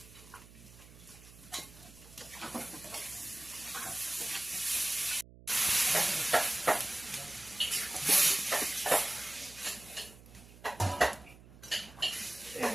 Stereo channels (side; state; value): right; noise; hum, 20 dB below the sound